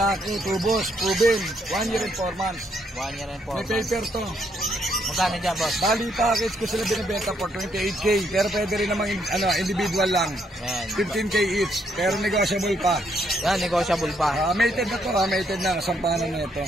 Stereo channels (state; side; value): normal; both; correlation 0.73